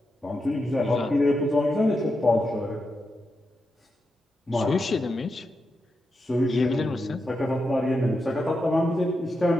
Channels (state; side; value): normal; both; correlation 0.86